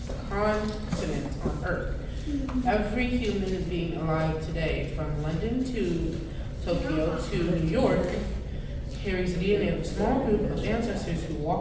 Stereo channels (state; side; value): identical; both; correlation 1.00